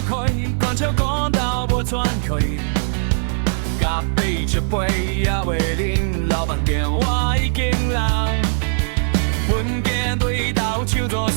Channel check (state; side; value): silent; left; digital silence